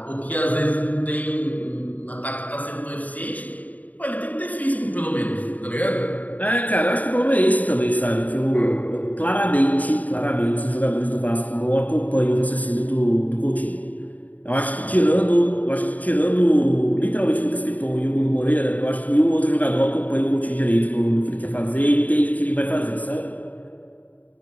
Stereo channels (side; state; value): right; late; 0.075 ms